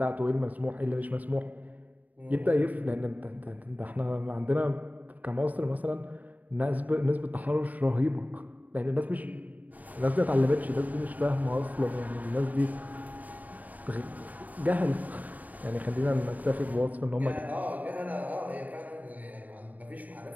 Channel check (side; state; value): left; late; 0.077 ms